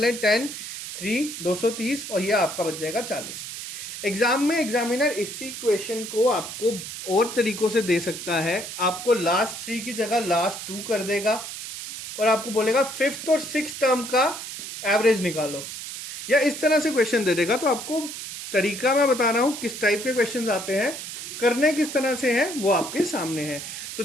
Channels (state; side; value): noise; right; hiss, 9 dB below the sound